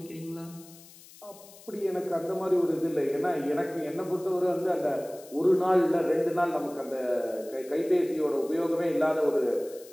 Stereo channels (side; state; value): left; noise; hiss, 21 dB below the sound